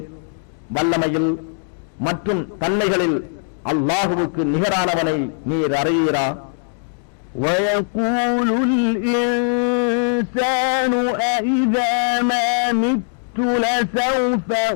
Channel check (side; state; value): right; silent; 66 dB below the other